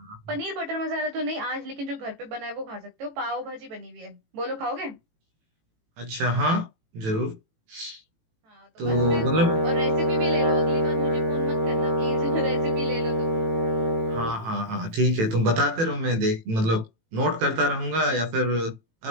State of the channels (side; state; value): left; late; 18 ms